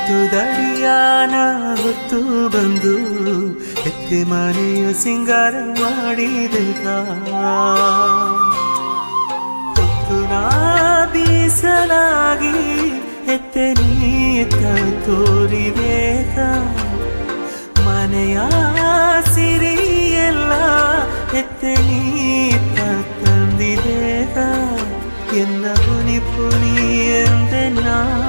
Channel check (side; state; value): both; inverted; correlation -1.00